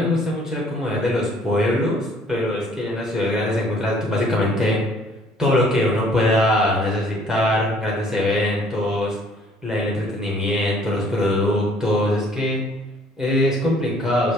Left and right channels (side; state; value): both; normal; correlation 0.59